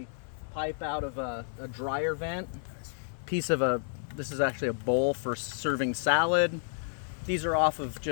pipe out of a dryer vent. This is actually a bowl for serving salad. These are off of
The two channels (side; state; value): right; silent; 57 dB below the other